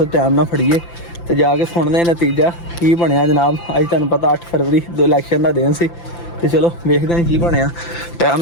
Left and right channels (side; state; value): right; late; 5.9 ms